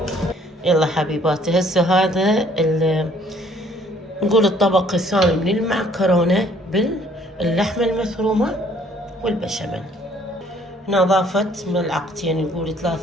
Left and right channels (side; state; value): both; normal; correlation 0.61